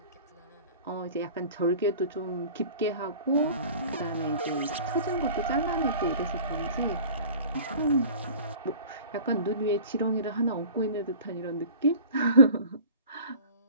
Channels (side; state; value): both; inverted; correlation -0.42